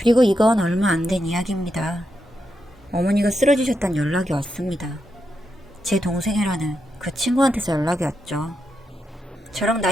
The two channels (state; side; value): normal; both; correlation 0.84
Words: 이건 얼마 안 된 이야기입니다. 어머니가 쓰러지셨다는 연락이 왔습니다. 제 동생이라는 그 친구한테서 연락이 왔죠. 저랑